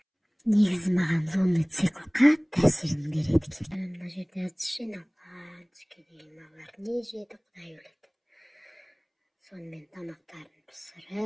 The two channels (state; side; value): identical; both; correlation 1.00